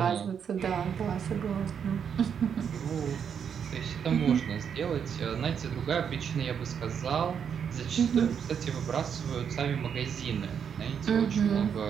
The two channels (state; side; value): quieter; left; 7.5 dB